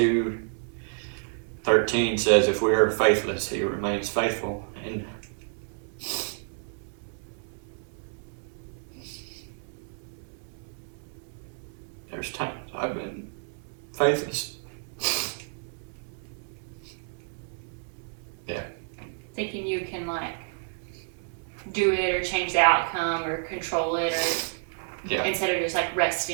2:13 says, if we are faithless, He remains faithful. And there's times I've been faithless. Yeah. Thinking you can, like, do it or change the outcome or control it, or instead of just, like,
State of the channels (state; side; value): silent; left; digital silence